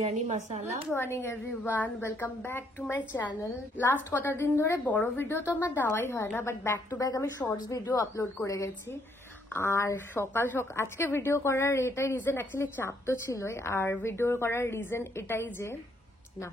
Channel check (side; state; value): both; normal; correlation 0.70